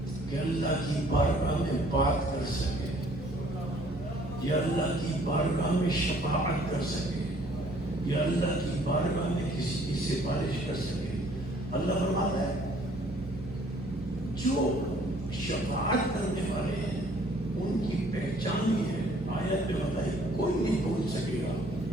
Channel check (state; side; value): noise; right; hum, 19 dB below the sound